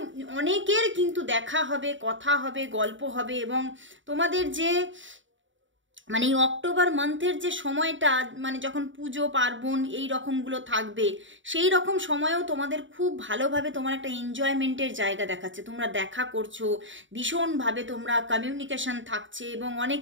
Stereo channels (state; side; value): late; left; 0.55 ms